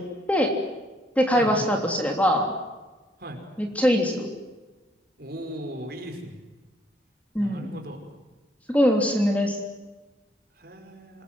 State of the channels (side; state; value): both; normal; correlation 0.68